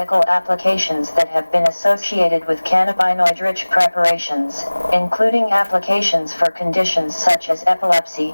applications that have been associated with cannabinoid-rich preparations, including applications for conditions such as epilepsy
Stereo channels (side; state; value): both; inverted; correlation -1.00